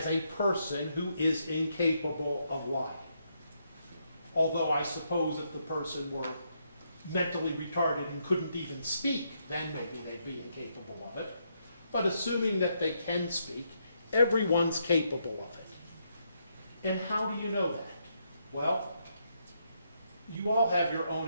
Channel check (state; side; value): inverted; both; correlation -0.78